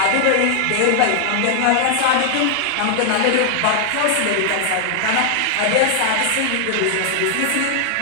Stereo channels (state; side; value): different; both; correlation 0.00